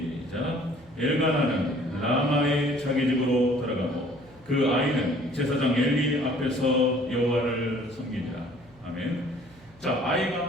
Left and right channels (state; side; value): noise; right; hum, 27 dB below the sound